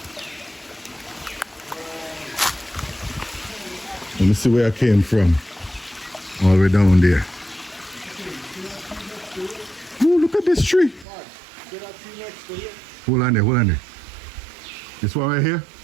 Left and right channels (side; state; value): left; drops out; at 11.1 s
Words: Let me see where I came from. All the way down there. Oh, look at this tree. Hold on there. This one right here?